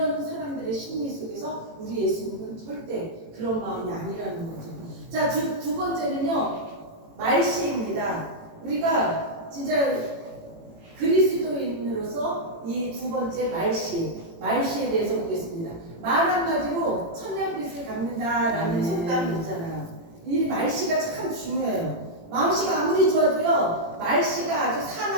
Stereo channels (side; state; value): left; late; 18 ms